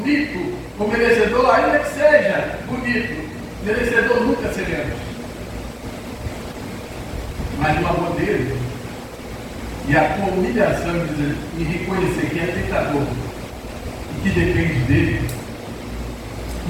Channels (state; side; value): identical; both; correlation 1.00